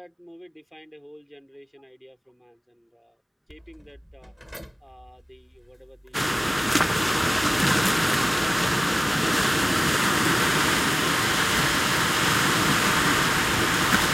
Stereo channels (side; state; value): both; identical; correlation 1.00